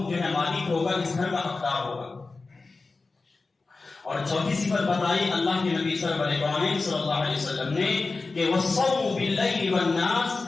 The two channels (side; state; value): right; quieter; 3.8 dB